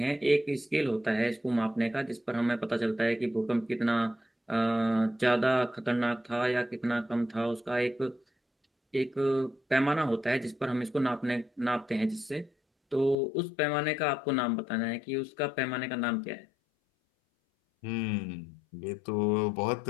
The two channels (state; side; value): drops out; right; at 13.2 s